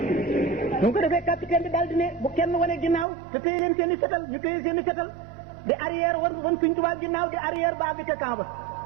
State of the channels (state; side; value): drops out; left; at 3.1 s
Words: mu ko defee capitaine bi daal di ne bu kenn wane ginnaaw te téye leen seen i fetal ñu téye seen i fetal di arrière wan Sëñ Tuubaa ginnaaw di arrière ba bi ca camp ba